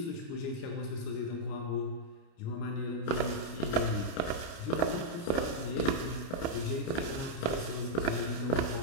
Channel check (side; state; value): right; late; 29 ms